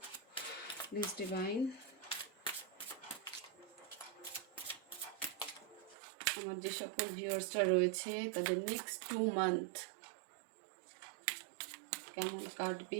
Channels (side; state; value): left; drops out; at 6.0 s